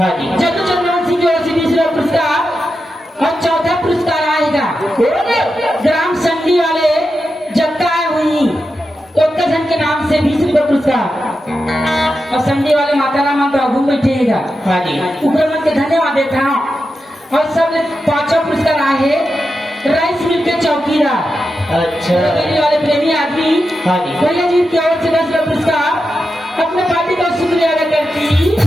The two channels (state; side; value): normal; both; correlation 0.89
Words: जी। जल्लू चंद्रवंशी की ओर से 20 रुपया पुरस्कार। और चौथा पुरस्कार आएगा ग्राम संडी वाले जत्ता हुई उत्तरखंड के नाम से 20 रुपया पुरस्कार। और संडी वाले माता राम घूम बैठेगा। हाँ जी। ऊपर मन के धन्यवाद देता हूँ। और सब पांचों पुरस्कार आए राइस मिल के चौकीदार अच्छा। वाले प्रेमी आदमी। हाँ जी। भैया जी की ओर से 10 रुपया पुरस्कार। अपने पार्टी का शुक्रिया अदा करती